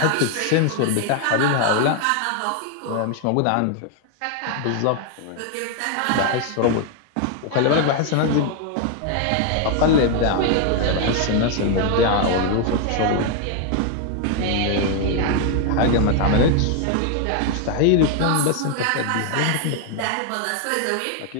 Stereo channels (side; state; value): both; different; correlation 0.00